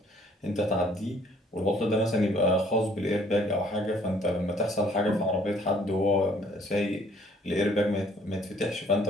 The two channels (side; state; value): both; normal; correlation 0.60